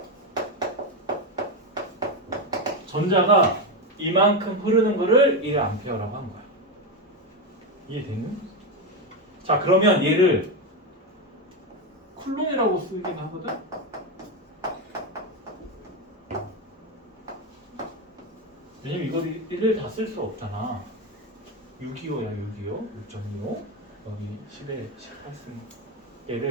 전자가 이만큼 흐르는 거를 1A라고 한 거야. 이해되니? 자, 그러면 얘를 쿨론이라고 쓰긴 하거든? 왜냐면 이걸 1을 다 쓸 수 없잖아. 625야, 625. 6.25. 여기 10에 18승.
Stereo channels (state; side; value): normal; both; correlation 0.11